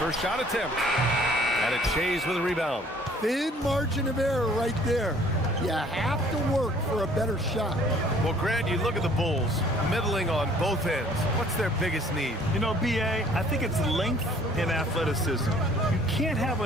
shot attempt. And it Shays with a rebound. Thin margin of error right there. You have to work for a better shot. Well, Grant, you look at the Bulls, middling on both ends. What's their biggest need? You know, B.A., I think it's length and athleticism. You can't have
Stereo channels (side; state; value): both; normal; correlation 0.56